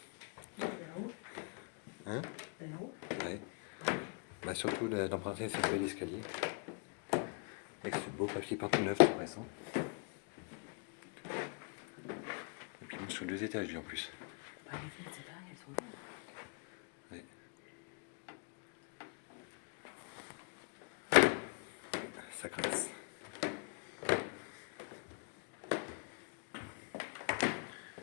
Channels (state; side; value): quieter; right; 37.8 dB